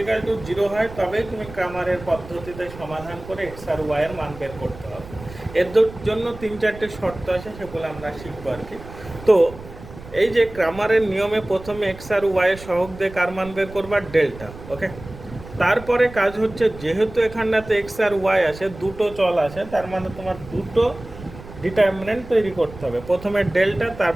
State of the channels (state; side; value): noise; right; rumble, 16 dB below the sound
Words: ইকাল টু 0 হয় তবেই তুমি ক্রামারের পদ্ধতিতে সমাধান করে এক্স আর ওয়াইয়ের মান বের করতে হবে। এর জন্য 3-4টে শর্ত আছে, সেগুলো আমরা শিখবো আর কি। তো এই যে ক্রামারের নিয়মে প্রথমে এক্স আর ওয়াইয়ের সহগ দিয়ে কার মান বের করবা, ডেল্টা। ওকে, তারপরে কাজ হচ্ছে যেহেতু এখানটাতে এক্স আর ওয়াই আছে, দুটো চল আছে, তার মানে তোমার দুটো ডিটারমিনেন্ট তৈরি করতে হবে। প্রথমে ডেল্টা,